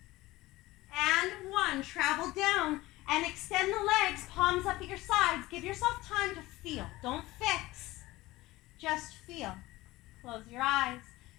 and 1. Travel down and extend the legs, palms up at your sides. Give yourself time to feel, don't fix, just feel. Close your eyes.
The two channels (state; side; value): quieter; right; 18.8 dB